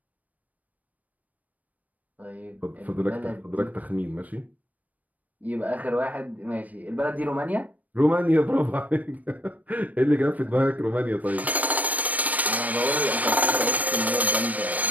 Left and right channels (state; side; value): late; left; 0.074 ms